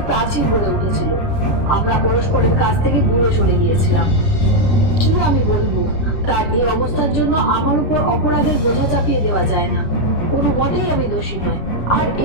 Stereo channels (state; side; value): late; right; 10 ms